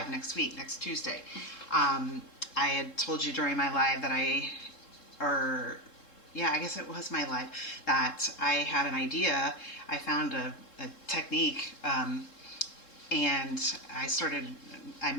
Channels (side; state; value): right; late; 3.7 ms